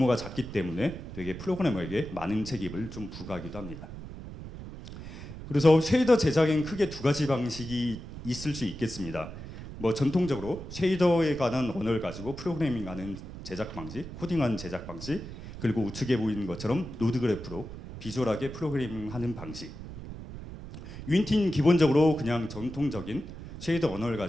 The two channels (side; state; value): right; noise; rumble, 11 dB below the sound